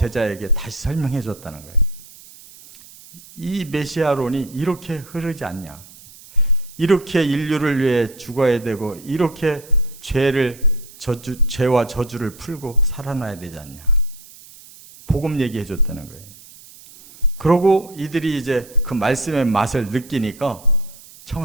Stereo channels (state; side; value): noise; right; hiss, 21 dB below the sound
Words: 다시 설명해 줬다는 거예요. 이 메시아론이 이렇게 흐르지 않냐? 이렇게 인류를 위해 죽어야 되고 이렇게 죄와 저주를 풀고 살아나야 되지 않냐? 복음 얘기해 줬다는 거예요. 그러고 이들이 이제 그 말씀의 맛을 느끼니까